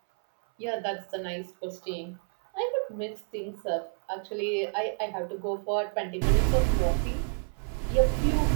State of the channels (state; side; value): silent; left; 59 dB below the other